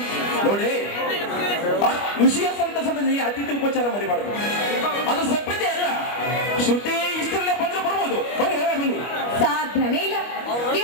ನೋಡಿ, ವಿಷಯ ಸಂತಸದಲ್ಲಿ ಅತಿಥಿ ಉಪಚಾರ ಮರಿಬಾರ್ದು. ಅದು ಸಭ್ಯತೆ ಅಲ್ಲ. ಶ್ರುತಿ ಇಷ್ಟರಲ್ಲೇ ಬಂದ್ರು ಬರ್ಬೋದು. ಬನ್ನಿ ಬನ್ನಿ. ಸಾಧ್ಯನೇ ಇಲ್ಲ.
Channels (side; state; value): right; late; 25 ms